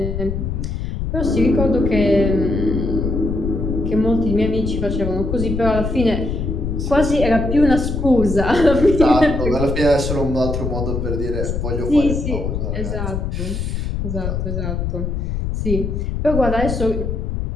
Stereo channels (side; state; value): left; noise; rumble, 2 dB below the sound